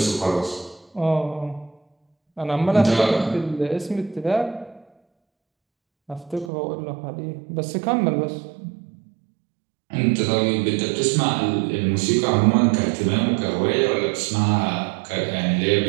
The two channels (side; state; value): left; drops out; at 6.5 s